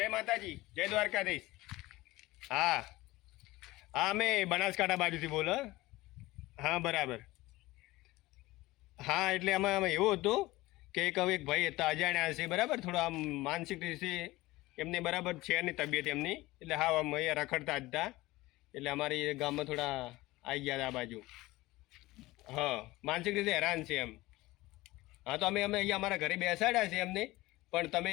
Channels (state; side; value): quieter; right; 19.2 dB